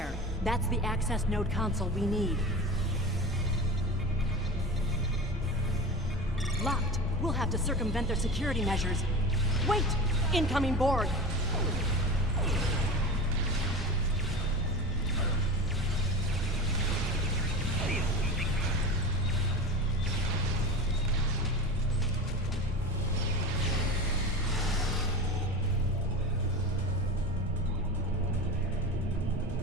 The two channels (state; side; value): normal; both; correlation 0.28